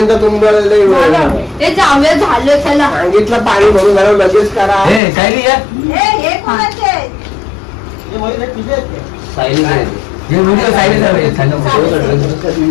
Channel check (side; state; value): right; drops out; at 5.0 s